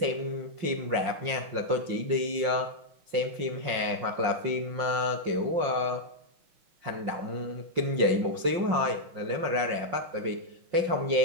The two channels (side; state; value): left; late; 5.6 ms